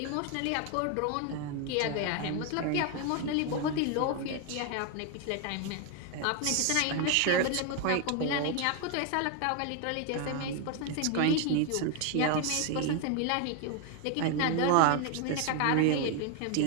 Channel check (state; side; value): different; both; correlation 0.01